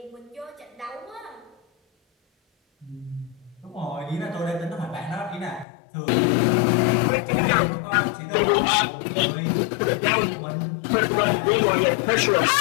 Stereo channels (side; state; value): right; drops out; at 5.7 s